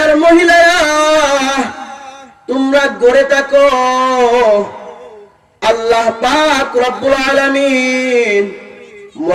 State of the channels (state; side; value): identical; both; correlation 1.00